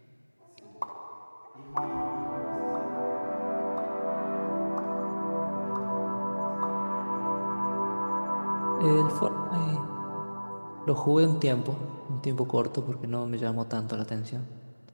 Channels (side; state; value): both; inverted; correlation -1.00